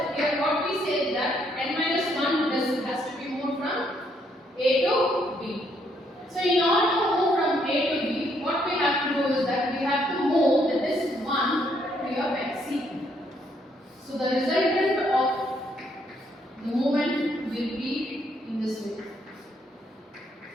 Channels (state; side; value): normal; both; correlation 0.72